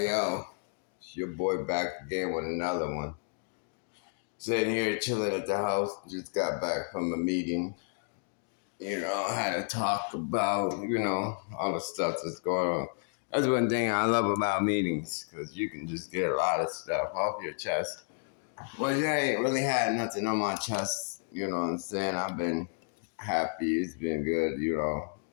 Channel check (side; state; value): right; silent; 56 dB below the other